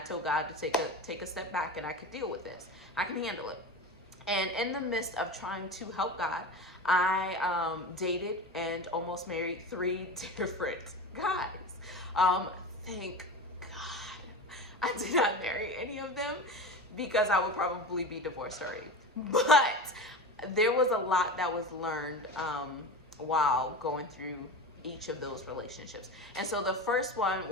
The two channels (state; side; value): normal; both; correlation 0.28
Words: told God to take a step back, and I could deal with this. I can handle it. And in the midst of trying to help God, I dated and almost married 3 different guys. Thank God I did not marry any of them because I would probably be divorced already. But there was a lot that was learned while going through each of those relationships. And so the first one,